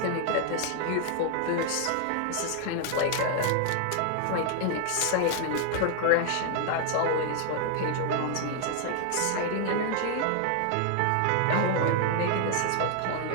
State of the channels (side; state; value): both; different; correlation 0.00